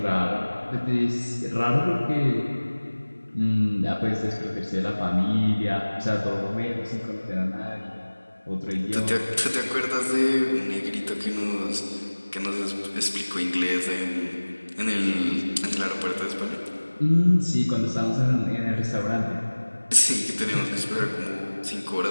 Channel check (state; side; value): inverted; both; correlation -1.00